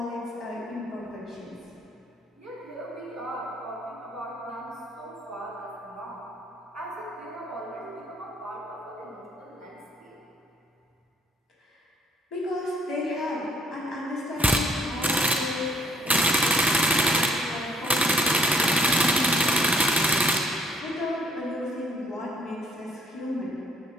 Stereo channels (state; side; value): normal; both; correlation 0.64